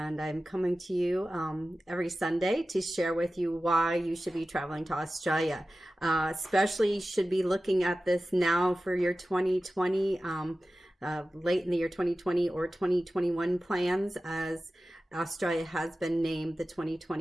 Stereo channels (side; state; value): both; normal; correlation 0.95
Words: I'm coming to you every Sunday to share with you why you should be traveling to Australia. Especially should be looking at this now for your 2020 late in the year 2020 or 2021 plans, as Australia has been named the